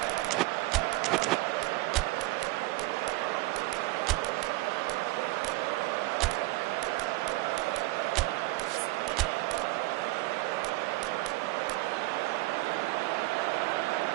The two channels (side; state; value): left; quieter; 20.6 dB